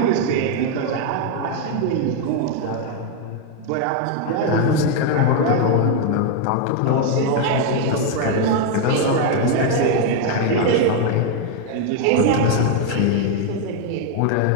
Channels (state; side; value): different; both; correlation 0.01